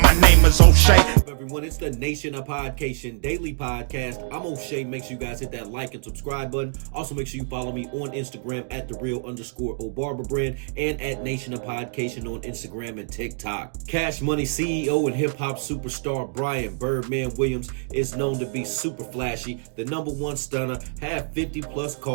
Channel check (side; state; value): left; silent; digital silence